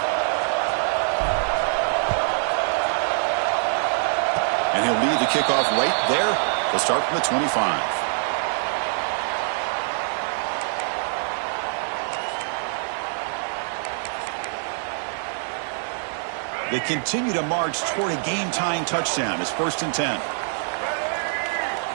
kickoff right there. They'll start from the 25. They continue to march toward a game-tying touchdown. It's 1st and 10.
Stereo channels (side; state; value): left; silent; 62 dB below the other